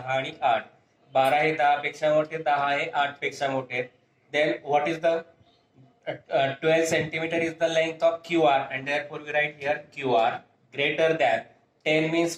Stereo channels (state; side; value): identical; both; correlation 1.00